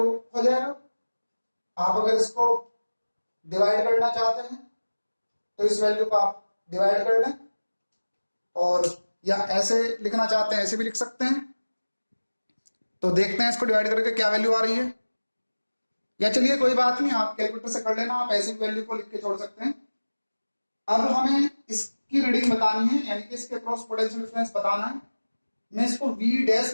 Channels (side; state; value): both; inverted; correlation -1.00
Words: जाएगा। आप अगर इसको डिवाइड करना चाहते हैं तो इस वैल्यू को आप डिवाइड कर लें, और या ऐसे लिखना चाहते हैं ऐसे भी लिख सकते हैं। तो देखते हैं इसको डिवाइड करके क्या वैल्यू आ रही है। या चलिए कोई बात नहीं, आप कैलकुलेटर से कर लेना, आप ऐसे वैल्यू को लिख के छोड़ सकते हैं। अब हमें इसकी रीडिंग बतानी है, यानी कि इसके क्रॉस पोटेंशियल डिफरेंस बताना है। मैं इसको V डैश